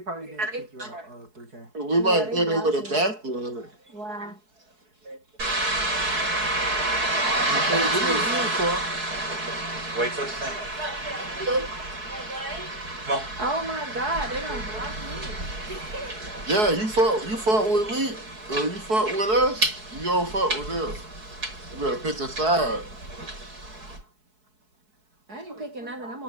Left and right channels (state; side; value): late; left; 4.7 ms